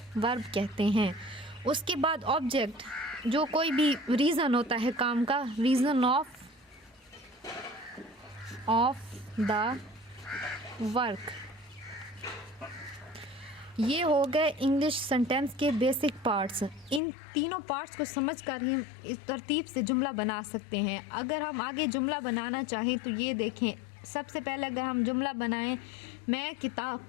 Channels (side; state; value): right; drops out; at 17.0 s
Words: वर्ब कहते हैं। उसके बाद ऑब्जेक्ट, जो कोई भी रीज़न होता है काम का, रीज़न ऑफ द वर्क। ये हो गए इंग्लिश सेंटेंस के बेसिक पार्ट्स। इन तीनों पार्ट्स को समझकर ही इस तरतीब से जुमला बना सकते हैं। अगर हम आगे जुमला बनाना चाहें तो ये देखें। सबसे पहले अगर हम जुमला बनाएं, मैं किताब